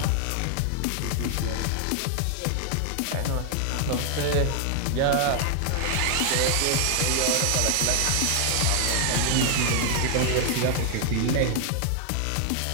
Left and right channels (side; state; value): both; different; correlation 0.00